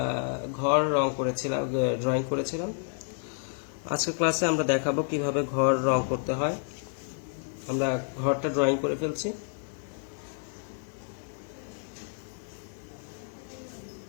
ঘর ড্রয়িং করেছিলাম। আজকের ক্লাসে আমরা দেখাবো কিভাবে ঘর রং করতে হয়। আমরা ঘরটা ড্রয়িং করে ফেলছি।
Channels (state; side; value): silent; right; 56 dB below the other